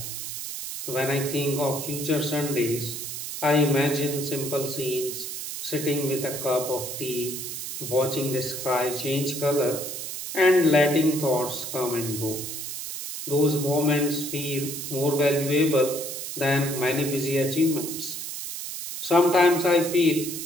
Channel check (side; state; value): right; noise; hiss, 6 dB below the sound